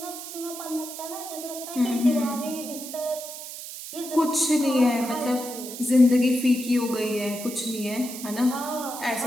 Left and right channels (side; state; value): right; noise; hiss, 10 dB below the sound